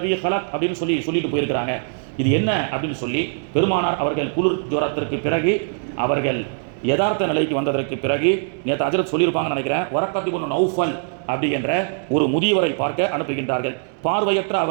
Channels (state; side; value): silent; left; 63 dB below the other